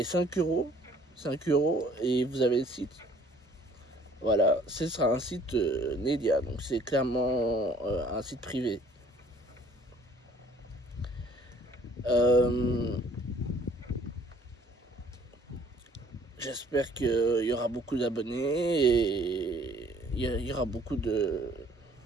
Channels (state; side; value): normal; both; correlation 0.57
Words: 5 euros. 5 euros et vous avez le site. Voilà, ce sera un site Nedia. Donc c'est clairement un site privé. J'espère qu'il y aura beaucoup d'abonnés et il y aura beaucoup de